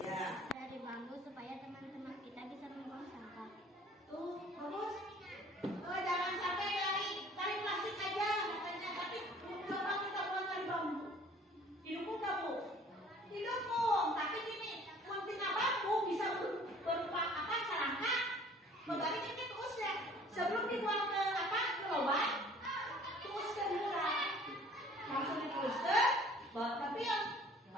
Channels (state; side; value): normal; both; correlation 0.52